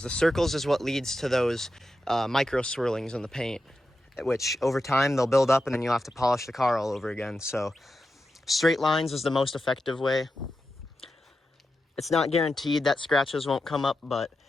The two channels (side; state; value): both; normal; correlation 0.89